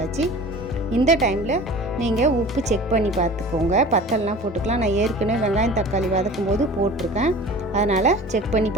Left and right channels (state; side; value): normal; both; correlation 0.40